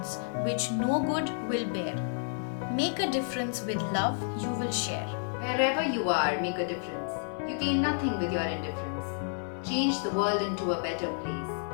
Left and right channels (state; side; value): silent; right; digital silence